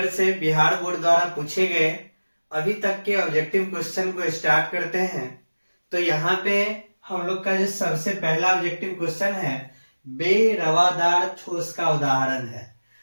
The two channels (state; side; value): inverted; both; correlation -1.00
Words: से बिहार बोर्ड द्वारा पूछे गए अभी तक के ऑब्जेक्टिव क्वेश्चन को स्टार्ट करते हैं। तो यहाँ पे हम लोग का जो सबसे पहला ऑब्जेक्टिव क्वेश्चन है, बेरवादार ठोस का उदाहरण है।